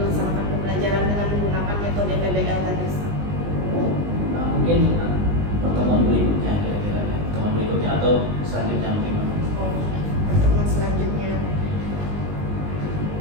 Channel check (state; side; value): late; left; 20 ms